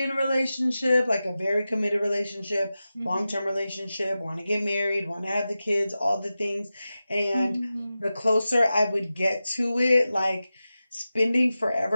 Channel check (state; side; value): inverted; both; correlation -0.93